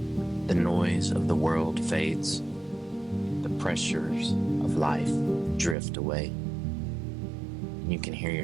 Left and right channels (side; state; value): left; drops out; at 5.8 s